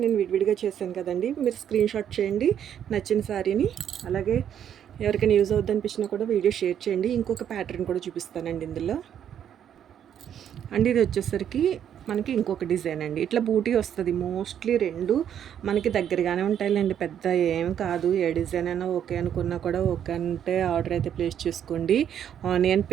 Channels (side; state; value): left; quieter; 9.4 dB